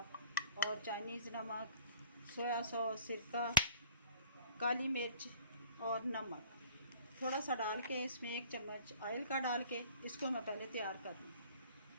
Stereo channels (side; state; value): both; inverted; correlation -0.49